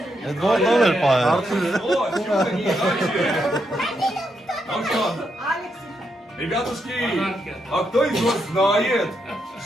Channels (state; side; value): normal; both; correlation 0.81